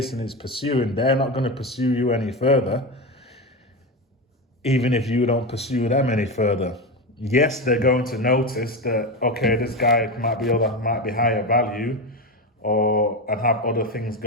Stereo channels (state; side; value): normal; both; correlation 0.17